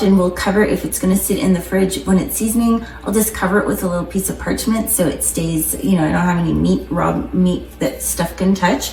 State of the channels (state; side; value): identical; both; correlation 1.00